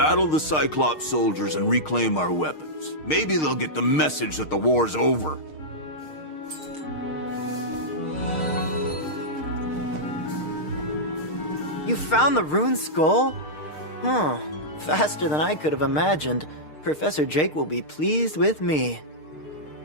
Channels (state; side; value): late; right; 6.5 ms